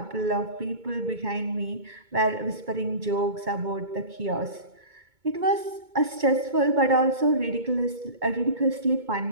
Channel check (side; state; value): left; late; 2.2 ms